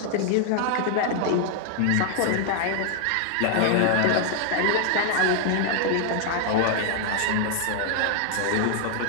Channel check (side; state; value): both; different; correlation 0.00